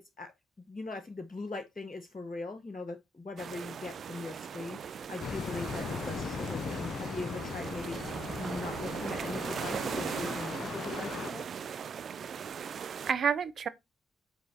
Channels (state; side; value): normal; both; correlation 0.75